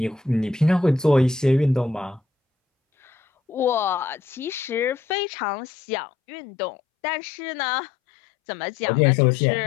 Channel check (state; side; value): drops out; right; at 5.2 s